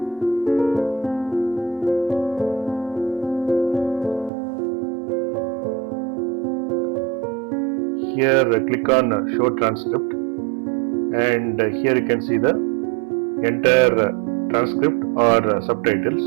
Here click on show transcript, and here you can see the entire transcript or subtitles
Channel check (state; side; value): drops out; left; at 4.3 s